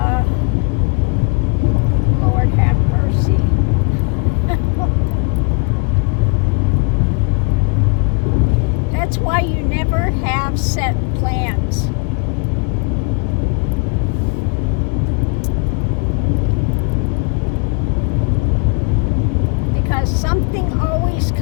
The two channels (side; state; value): right; quieter; 33.2 dB